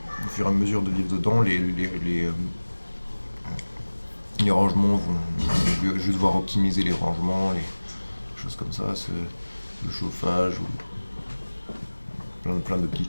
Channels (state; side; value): inverted; both; correlation -1.00